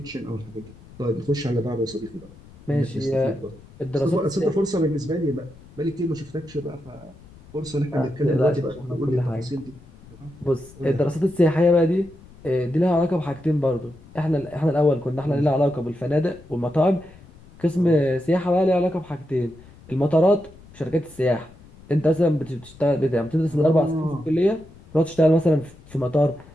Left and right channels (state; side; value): noise; left; rumble, 22 dB below the sound